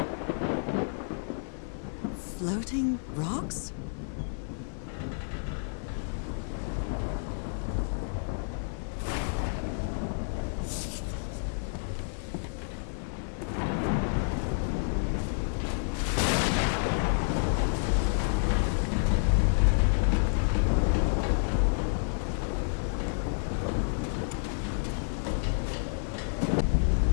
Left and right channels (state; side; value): silent; right; digital silence